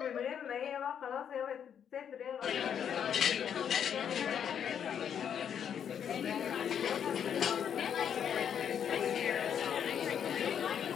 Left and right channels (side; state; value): right; quieter; 8.4 dB